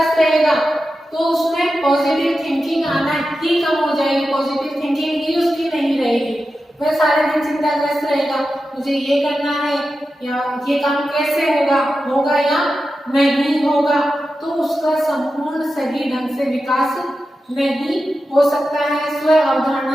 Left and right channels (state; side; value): normal; both; correlation 0.91